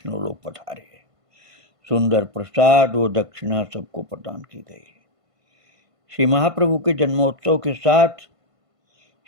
लोग पधारे। सुंदर प्रसाद व दक्षिणा सबको प्रदान की गई। श्री महाप्रभु के जन्मोत्सव के साथ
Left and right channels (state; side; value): late; left; 1.5 ms